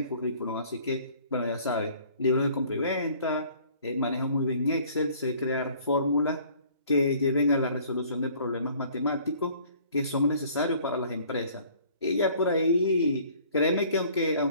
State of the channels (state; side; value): inverted; both; correlation -0.55